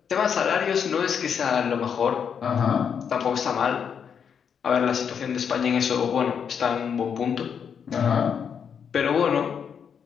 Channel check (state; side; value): quieter; right; 7.3 dB